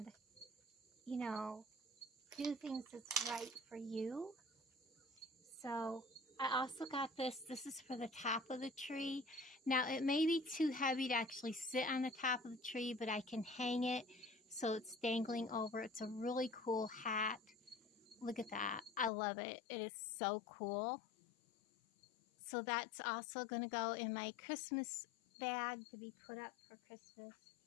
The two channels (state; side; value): drops out; right; at 19.1 s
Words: do things that's right for you. So I also got this. This is for the top of the tree. Now, it may be too heavy to actually sit on the top of the tree, but I can hang it so it's dangling over. It's a really cool hat. Look at that. I love it. It is so cool. So that's also going to go in my Christmas bag to be put up for Christmas.